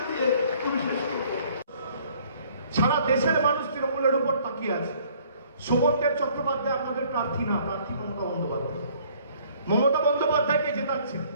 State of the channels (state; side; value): inverted; both; correlation -0.59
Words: দিয়ে আমি শেষ করব। সারা দেশের মানুষ তৃণমূলের উপর তাকিয়ে আছে। শোভনদেব চট্টোপাধ্যায় আপনাদের প্রার্থী না, প্রার্থী মমতা বন্দ্যোপাধ্যায়। মমতা বন্দ্যোপাধ্যায়কে জেতাচ্ছে,